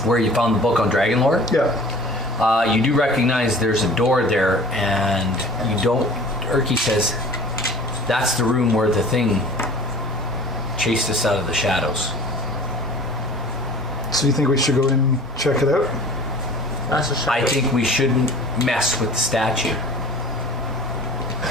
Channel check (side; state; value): both; normal; correlation 0.44